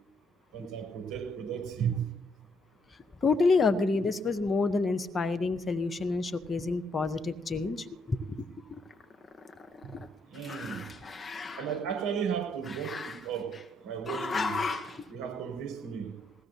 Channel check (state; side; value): normal; both; correlation 0.73